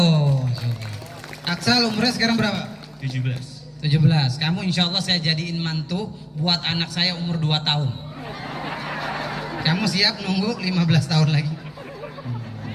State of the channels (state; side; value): identical; both; correlation 1.00